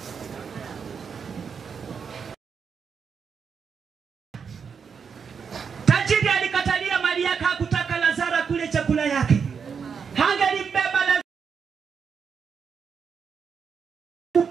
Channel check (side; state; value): left; quieter; 6.3 dB